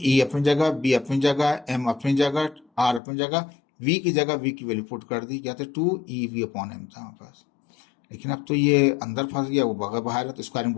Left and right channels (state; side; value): drops out; right; at 3.0 s